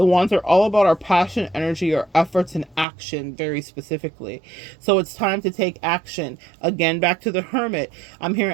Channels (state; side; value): drops out; left; at 2.9 s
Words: wands are all about our passion, energy, our efforts, and action very specifically. So it's time to take action. Again, back to the Hermit. I'm